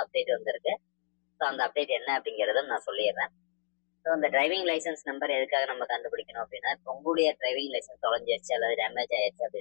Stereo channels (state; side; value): silent; right; digital silence